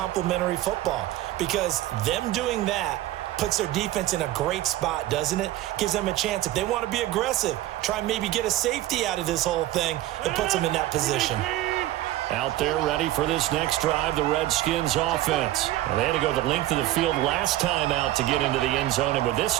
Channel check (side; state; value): left; quieter; 15.3 dB